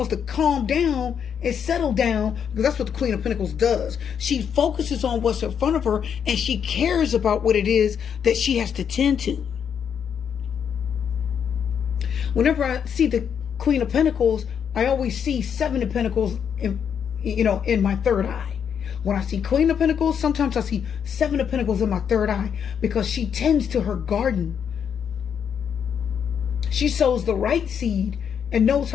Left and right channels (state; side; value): quieter; right; 7.8 dB